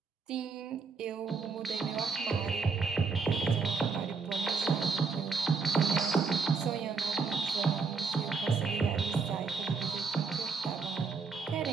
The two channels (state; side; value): quieter; left; 4.9 dB